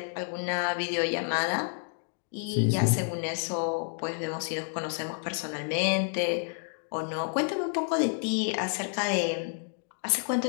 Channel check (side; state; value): right; silent; 58 dB below the other